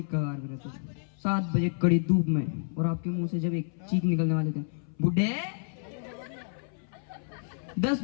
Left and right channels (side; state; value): right; silent; 58 dB below the other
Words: की कगार पे रहते थे, 7 बजे कड़ी धूप में, और आपके मुंह से जब एक चीख निकलने वाले थे, बुढ़े। 10